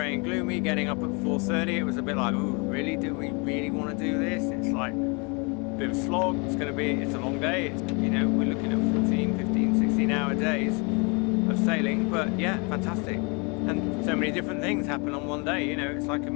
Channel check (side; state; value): right; quieter; 31.6 dB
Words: and gloomy. Getting up at 4:30, it was a bit like, oh really, do we really want to do this? It's like a bit of a slog. It's a long day. You know, we're looking at 14, 15, 16-hour days of sailing, but yeah, fantastic. And so many different things happen on one day. You know, it's like a